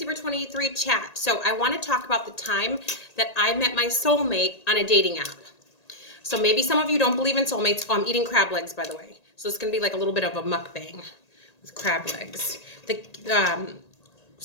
chat. So I want to talk about the time that I met my soulmate on a dating app. So maybe some of you don't believe in soulmates. Oh, I'm eating crab legs, by the way. So it's going to be like a little bit of a mukbang with crab legs.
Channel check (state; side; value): late; right; 1.8 ms